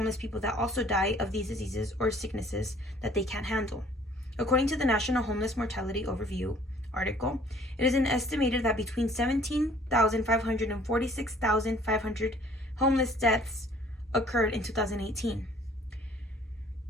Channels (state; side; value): normal; both; correlation 0.56